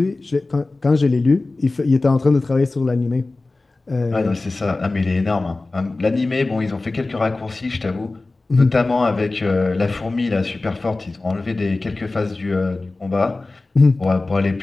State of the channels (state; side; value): quieter; right; 3.2 dB